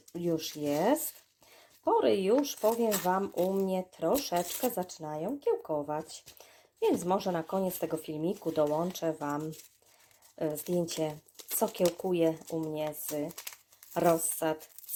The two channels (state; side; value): identical; both; correlation 1.00